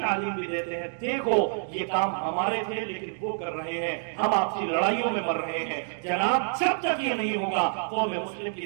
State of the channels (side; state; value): left; silent; 60 dB below the other